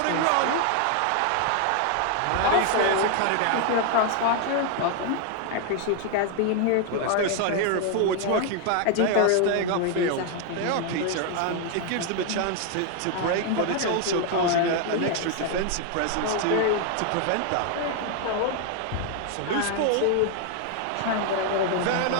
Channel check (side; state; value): both; different; correlation 0.01